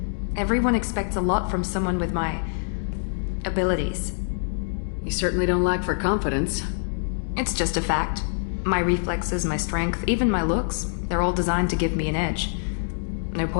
Everyone expects a lot from someone with my abilities. You certainly don't lack for confidence. It's just a fact. My reflexes, my strength, even my looks, they're all designed to give me an edge. No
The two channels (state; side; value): silent; right; digital silence